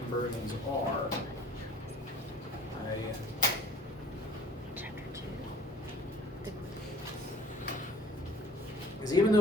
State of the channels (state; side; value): normal; both; correlation 0.50